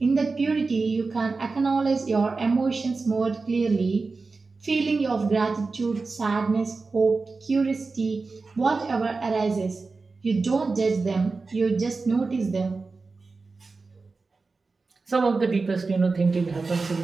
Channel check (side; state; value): left; quieter; 4.0 dB